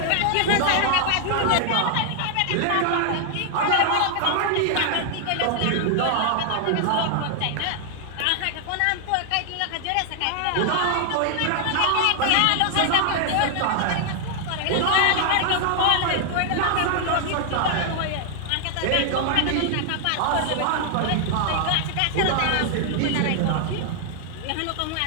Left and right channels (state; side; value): different; both; correlation 0.00